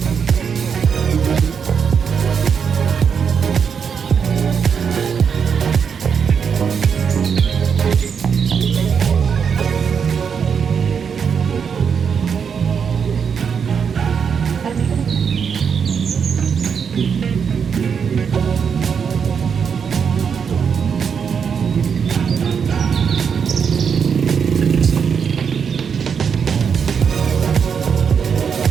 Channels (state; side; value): quieter; left; 6.7 dB